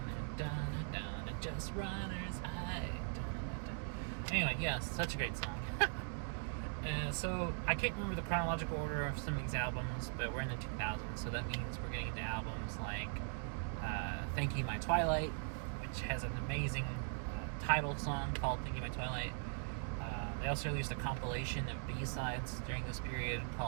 dun dun dun. Just runners high, dun dun dun. Anyway, yes, such a great song. So I can't remember the chronological order of some of these albums, but we're in the 2000s, so that means we're getting into albums like Thank You My Twilight, which has an amazing title song called Thank You My Twilight. They also released a compilation of B-sides during this period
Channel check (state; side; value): silent; left; 51 dB below the other